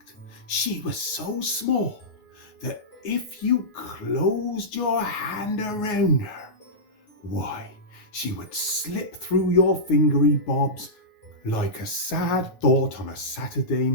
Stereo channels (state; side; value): late; right; 9.5 ms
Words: she was so small that if you closed your hand around her, why, she would slip through your fingery bobs like a sad thought on a Saturday